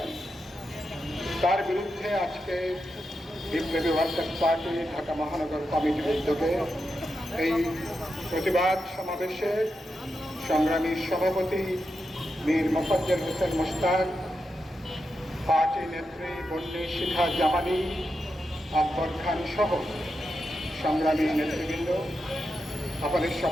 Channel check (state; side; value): normal; both; correlation 0.87